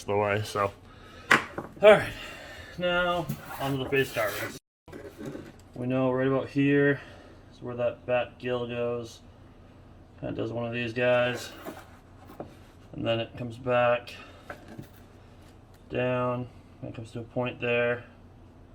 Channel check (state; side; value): identical; both; correlation 1.00